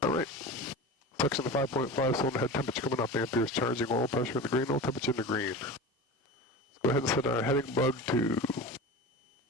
Alright, section of 5.5, cylinder head temperature coming up, amperes charging, oil pressure in the green, oil temperature in the green. Let's go ahead and set our heading bug to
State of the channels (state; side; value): normal; both; correlation 0.30